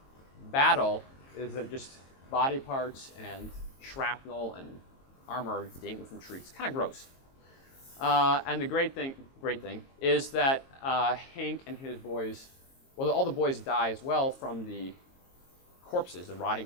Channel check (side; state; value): right; late; 22 ms